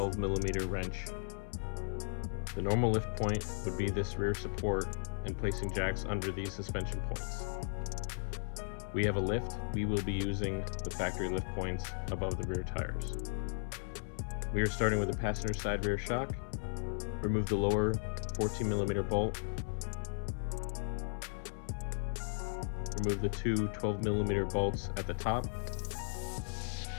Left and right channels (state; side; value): silent; right; 54 dB below the other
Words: millimeter wrench. The normal lift point would be this rear support and placing jacks under these suspension points. We have a lift. We will be using the factory lift points above the rear tires. We are starting with the passenger side rear shock. Remove the lower 14 millimeter bolt. Remove the two 12 millimeter bolts at the top.